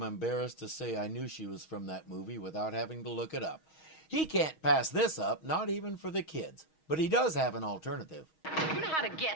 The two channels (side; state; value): right; late; 6.3 ms